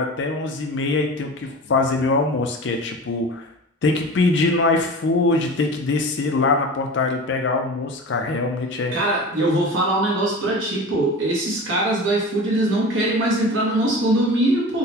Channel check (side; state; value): both; normal; correlation 0.34